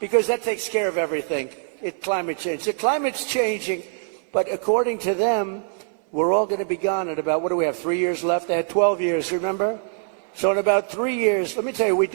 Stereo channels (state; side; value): silent; left; digital silence